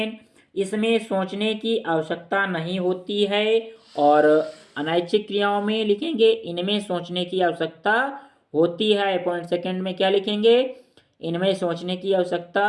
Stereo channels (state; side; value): identical; both; correlation 1.00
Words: इसमें सोचने की आवश्यकता नहीं होती है और अनैच्छिक क्रियाओं में लिखेंगे इनमें सोचने की आवश्यकता होती है। पॉइंट सेकेंड में क्या लिखेंगे? इनमें सोचने की आवश्यकता